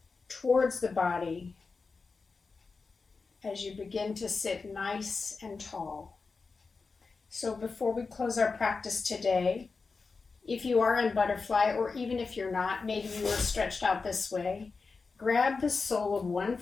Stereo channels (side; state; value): right; quieter; 4.4 dB